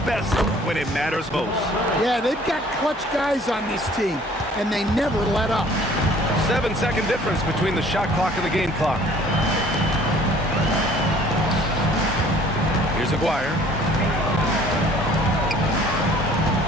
best when it matters most. Yeah, they've got clutch guys on this team, and they never let up. 7-second difference between the shot clock and the game clock. Here's Aguirre.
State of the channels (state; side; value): normal; both; correlation 0.54